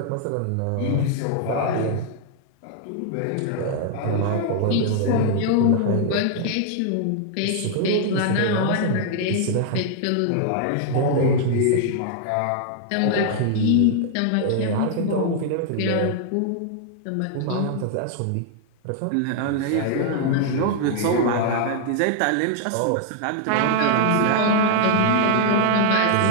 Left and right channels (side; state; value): both; different; correlation 0.00